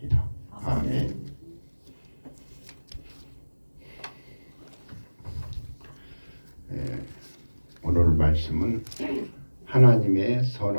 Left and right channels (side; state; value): both; inverted; correlation -1.00